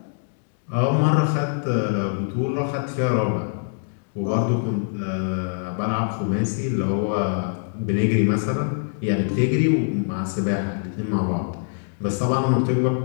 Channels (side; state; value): right; silent; digital silence